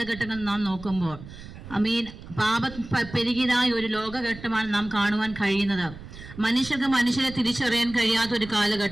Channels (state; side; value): noise; right; rumble, 15 dB below the sound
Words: നാം നോക്കുമ്പോൾ പാപം പെരുകിയതായ ഒരു ലോകഘട്ടമാണ് നാം കാണുവാൻ കഴിയുന്നത്. മനുഷ്യർക്ക് മനുഷ്യരെ തിരിച്ചറിയാൻ കഴിയാത്ത ഒരു